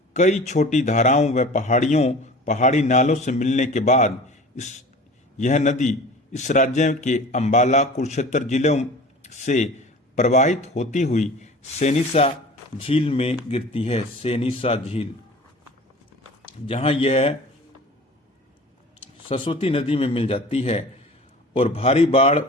कई छोटी धाराओं व पहाड़ी नालों से मिलने के बाद यह नदी इस राज्य के अंबाला कुरुक्षेत्र जिलों से प्रवाहित होती हुई सेनिसा झील में गिरती है। सेनिसा झील, जहां यह सरस्वती नदी में मिल जाती है और भारी बाढ़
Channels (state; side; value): normal; both; correlation 0.41